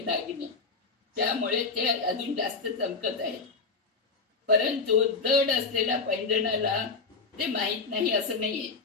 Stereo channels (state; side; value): quieter; right; 4.4 dB